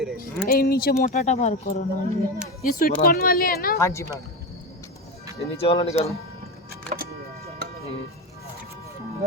এই নিচে মোটাটা বার করো না, ये स्वीट कॉर्न वाले है ना? हाँ जी मैम, ये नीचे वाला निकालो।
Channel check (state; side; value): normal; both; correlation 0.18